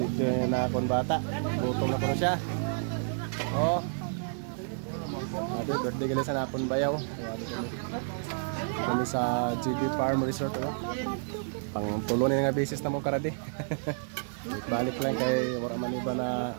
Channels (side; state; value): left; silent; digital silence